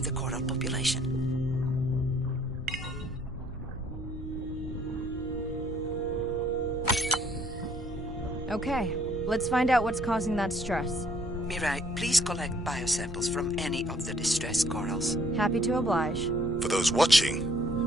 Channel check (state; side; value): normal; both; correlation 0.63